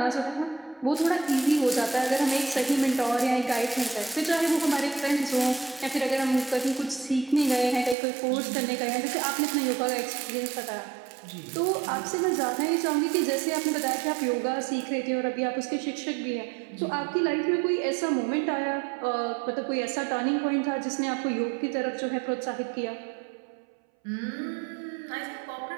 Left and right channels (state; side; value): drops out; left; at 8.0 s